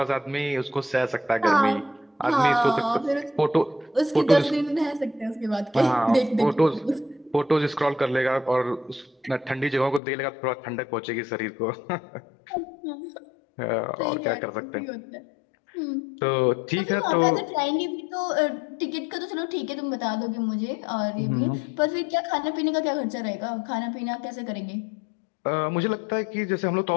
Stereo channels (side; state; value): right; drops out; at 10.0 s